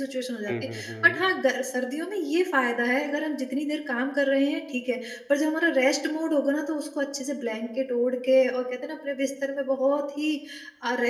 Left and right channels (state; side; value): identical; both; correlation 1.00